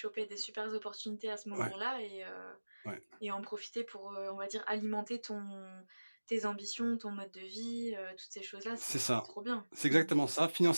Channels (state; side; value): inverted; both; correlation -1.00